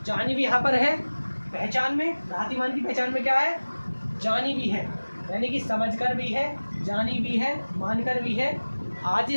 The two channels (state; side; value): inverted; both; correlation -1.00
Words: जानी भी यहाँ पर है पहचान में, भ्रातिमान की पहचान में क्या है, जानी भी है, यानी कि समझकर भी है, जानी भी है, मानकर भी है,